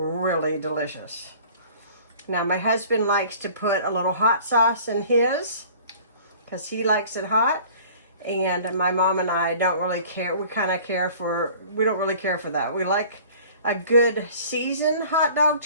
delicious. Now my husband likes to put a little hot sauce in his because he likes it hot, and my mom and I don't really care. We don't really care for that. We like a good seasoned hot dog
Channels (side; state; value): both; inverted; correlation -0.48